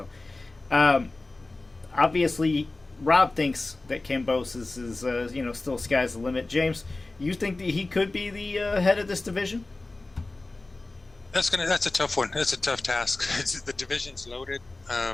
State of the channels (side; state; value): right; quieter; 3.1 dB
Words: obviously, Rob thinks that Kambosos is, still sky's the limit. James, you think that he could be the head of this division? That's a tough one. That's a tough task. The division's loaded.